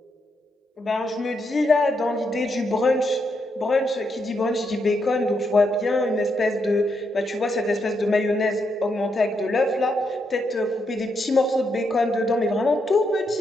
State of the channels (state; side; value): normal; both; correlation 0.80